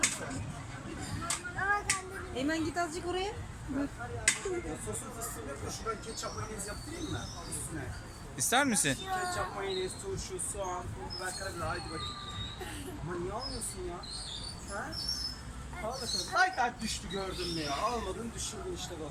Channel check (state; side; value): identical; both; correlation 1.00